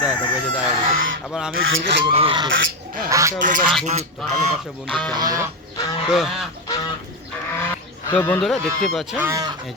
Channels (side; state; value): both; normal; correlation 0.10